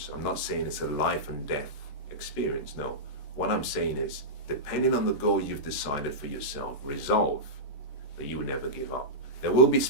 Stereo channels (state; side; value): late; right; 14 ms